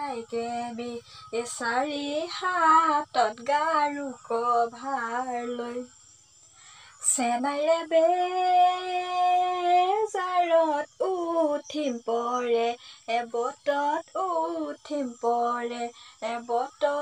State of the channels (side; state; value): both; identical; correlation 1.00